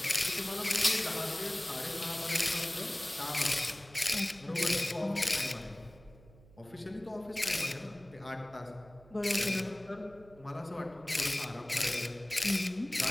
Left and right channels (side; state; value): right; noise; hum, 23 dB below the sound